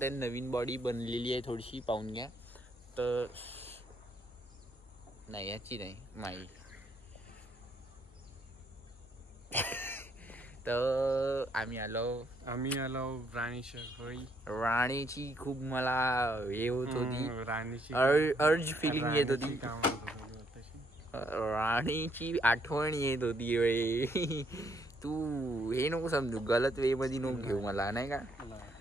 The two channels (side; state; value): both; normal; correlation 0.71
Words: आहे. नवीन बॉडी बनलेली आहे, थोडीशी पाहून घ्या. तर नाही याची नाही माई. तर आम्ही आलो राणीची खूप मला हे होत होती, राणीची अर्ज फिलिंग येत होती, राणीची आठवण येत होती. तू हे नको समजू, गलत वे मध्ये नको घेऊ मला, नाही का.